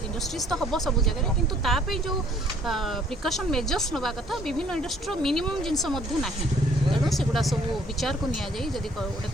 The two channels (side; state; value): both; normal; correlation 0.60